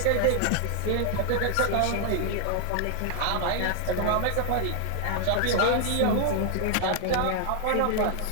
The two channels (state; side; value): different; both; correlation 0.00